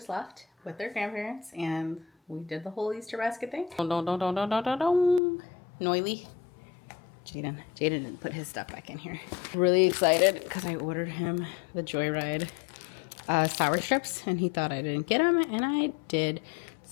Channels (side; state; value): right; drops out; at 5.2 s